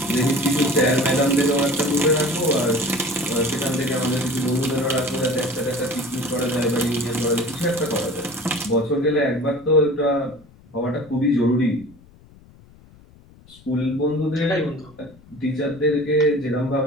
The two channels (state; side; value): noise; left; rumble, 25 dB below the sound